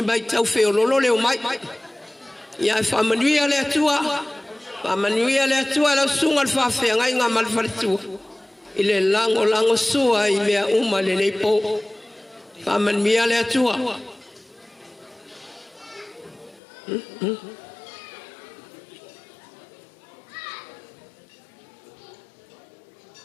mai tau feo lolo le o mai ia fa manuia le tua la sunga al fa fe ngai nga mal falitu ile lango sua i mea uma le nei po fa manuia le tua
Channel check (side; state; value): right; drops out; at 16.6 s